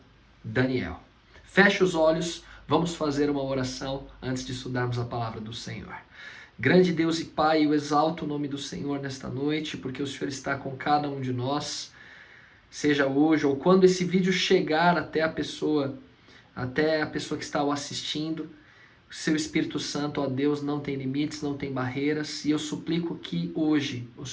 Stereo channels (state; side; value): identical; both; correlation 1.00